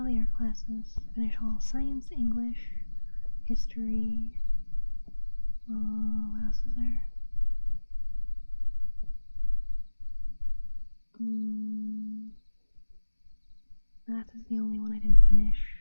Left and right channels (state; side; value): inverted; both; correlation -1.00